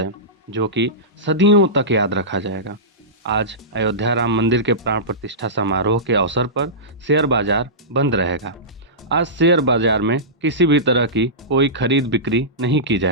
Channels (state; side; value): normal; both; correlation -0.18